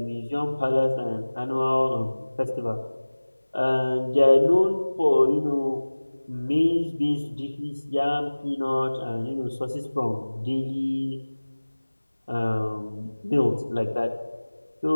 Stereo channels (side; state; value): both; inverted; correlation -1.00